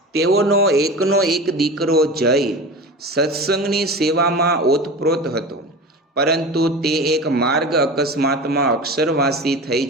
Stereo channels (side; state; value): both; normal; correlation 0.31